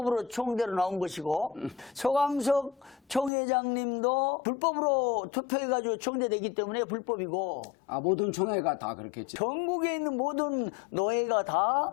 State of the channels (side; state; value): right; drops out; at 3.3 s